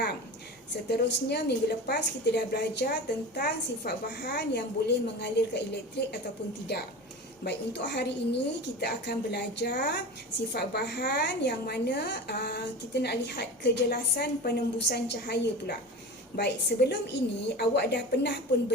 Seterusnya, minggu lepas kita dah belajar tentang sifat bahan yang boleh mengalirkan elektrik ataupun tidak. Baik, untuk hari ini kita akan belajar sifat bahan yang mana kita nak lihat kejelasan penembusan cahaya pula. Baik, sebelum ini awak dah pernah pun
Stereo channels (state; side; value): normal; both; correlation 0.31